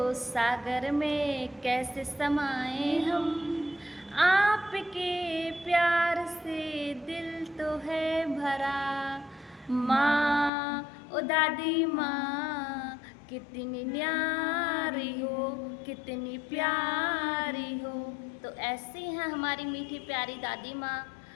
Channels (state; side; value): drops out; right; at 10.5 s